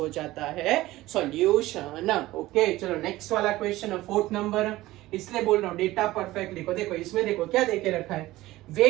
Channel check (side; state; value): left; quieter; 17.3 dB